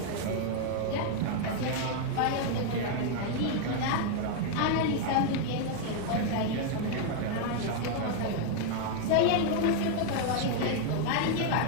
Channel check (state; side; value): different; both; correlation 0.00